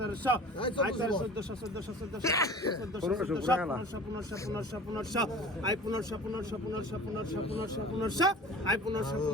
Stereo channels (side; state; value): both; normal; correlation 0.41